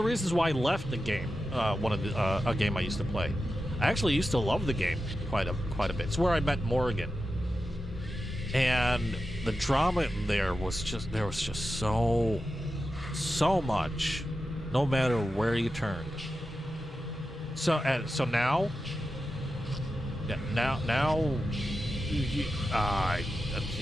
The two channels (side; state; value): both; normal; correlation 0.91